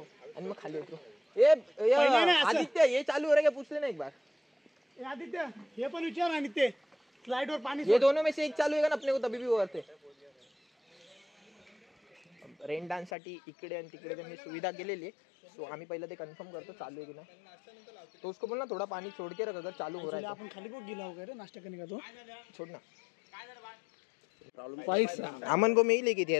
आणि मग खाली उतरू. पहिलं नाही असं. आदित्य ये चालू हो रहा है पूछ लेना एक बार. ए आदित्य हे पण विचार आणि ते स्लाइड वर पाणी ये दोनों में से एक चालू है ना अपने को तभी भी वो करते. रेन डान्स साठी इकडे आणि तिकडे त्यांनी सुविधा केलेली आहे. सो आम्ही पहिलं ते कन्फर्म करतो चालू आहे की नाही. तो उसको बोलना थोड़ा पानी छोड़ के रख अगर चालू हो रहा है आपण खाली बघ गेला वगैरे नाश्ता करने का तो तो छोड़ ना. पैसा अमन को मैं ही लेके दिया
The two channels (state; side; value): drops out; right; at 13.1 s